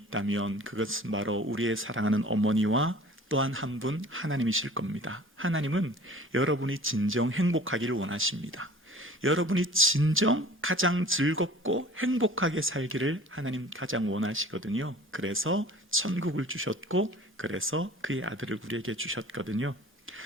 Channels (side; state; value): both; normal; correlation 0.45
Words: 그것은 바로 우리의 사랑하는 어머니와 또한 한 분 하나님이실 겁니다. 하나님은 여러분이 진정 행복하기를 원하십니다. 여러분이 진정 가장 즐겁고 행복하게 살기를 하나님 가장 원하시거든요. 그래서 천국을 주셨고 그래서 그의 아들을 우리에게 주셨거든요.